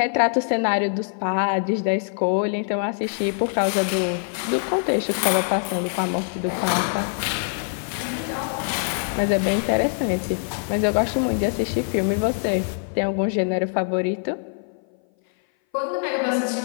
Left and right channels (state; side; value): silent; right; 58 dB below the other